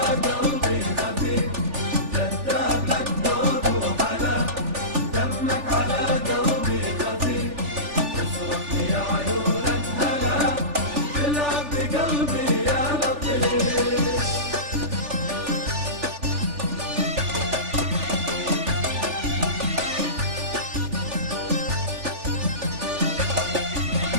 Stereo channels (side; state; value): left; late; 3.4 ms